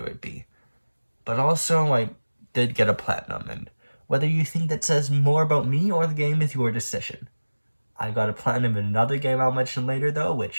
would be. But also, I did get a platinum, and whether you think that says more about me or the game is your decision. I got a platinum in another game I'll mention later though,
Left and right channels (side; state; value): both; inverted; correlation -1.00